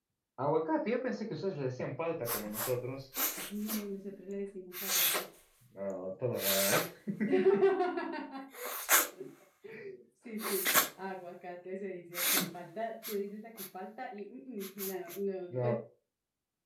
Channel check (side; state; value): both; identical; correlation 1.00